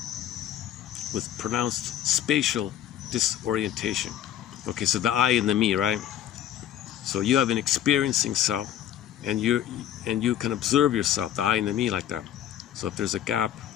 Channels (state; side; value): quieter; right; 11.0 dB